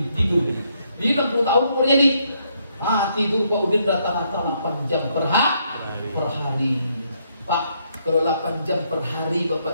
tidur? Di 60 tahun umurnya nih. Tidur Pak Udin rata-rata 8 jam per hari. Pak, kalau 8 jam per hari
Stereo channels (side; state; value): both; inverted; correlation -0.73